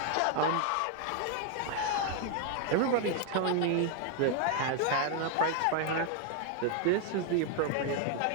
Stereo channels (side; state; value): both; different; correlation 0.00